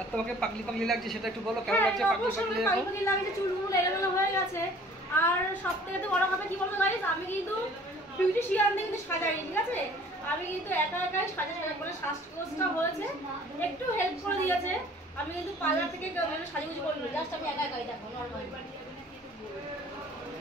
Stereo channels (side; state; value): both; normal; correlation 0.52